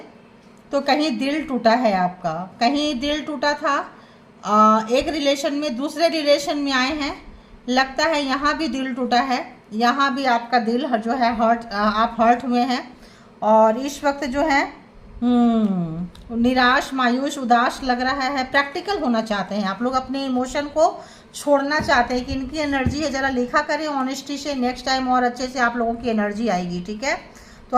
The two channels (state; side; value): identical; both; correlation 1.00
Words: तो कहीं दिल टूटा है आपका, कहीं दिल टूटा था। एक रिलेशन में दूसरे रिलेशन में आए हैं, लगता है यहाँ भी दिल टूटा है, यहाँ भी आपका दिल जो है हर्ट, आप हर्ट हुए हैं। और इस वक्त जो है निराश, मायूस, उदास लग रहा है। प्रैक्टिकल होना चाहते हैं आप लोग, अपने इमोशन को छोड़ना चाहते हैं कि इनकी एनर्जी है, ज़रा लिखा करें ऑनेस्टी से, नेक्स्ट टाइम और अच्छे से आप लोगों की एनर्जी आएगी, ठीक है। तो